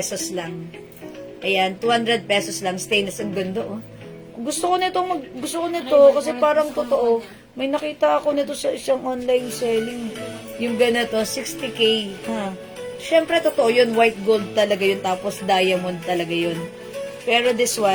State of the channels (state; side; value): identical; both; correlation 1.00